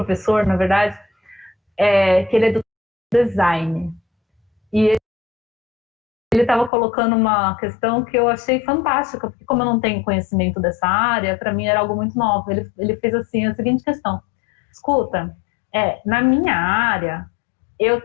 na verdade, que ele é do design, e ele estava colocando uma questão que eu achei fantástica, porque como eu não tenho conhecimento dessa área, para mim era algo muito novo. Ele fez assim, a seguinte questão: escuta, na minha área, eu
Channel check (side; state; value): right; drops out; at 6.7 s